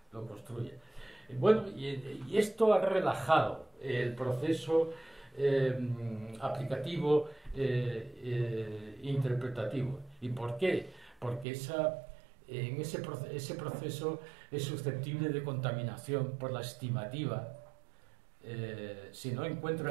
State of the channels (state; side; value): drops out; left; at 11.5 s